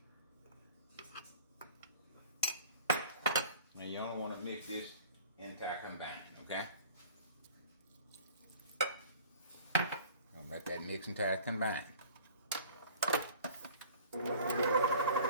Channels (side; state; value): both; inverted; correlation -0.47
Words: Now you only want to mix this entire combined, okay? Don't let that mix entire combine. Now